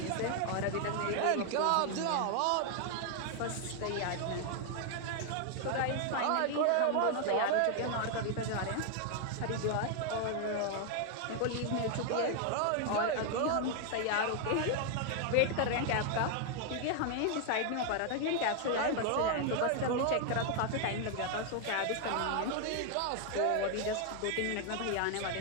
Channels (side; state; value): both; different; correlation 0.00